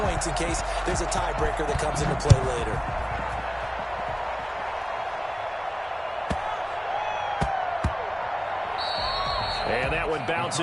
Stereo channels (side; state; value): both; identical; correlation 1.00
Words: in case there's a tiebreaker that comes into play later? And that one